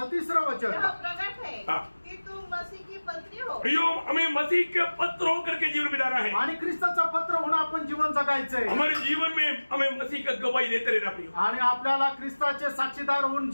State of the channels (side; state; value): both; inverted; correlation -1.00